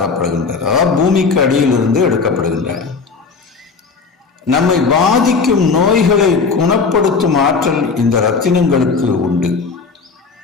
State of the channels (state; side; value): quieter; right; 4.9 dB